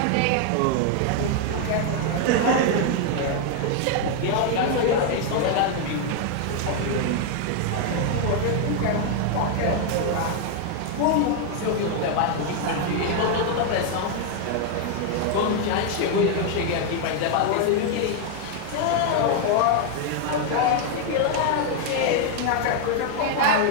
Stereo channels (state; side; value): different; both; correlation 0.00